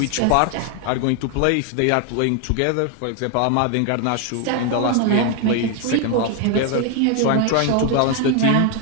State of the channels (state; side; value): different; both; correlation 0.01